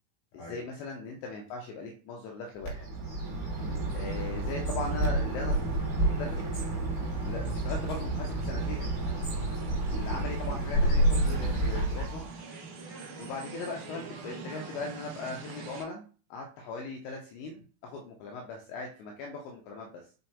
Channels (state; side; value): late; right; 18 ms